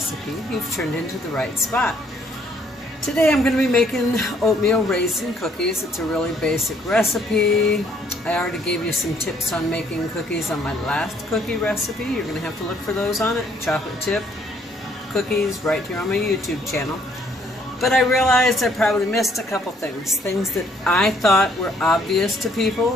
you've turned into the right spot. Today I'm going to be making oatmeal raisin cookies. It's a really basic recipe. I already gave you some tips on making cookies on my last cookie recipe. You're going to have to look for those on it. Chocolate chip cookies right here on my YouTube channel. But I realized I probably missed a couple things that I thought were obvious to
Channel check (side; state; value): both; normal; correlation 0.65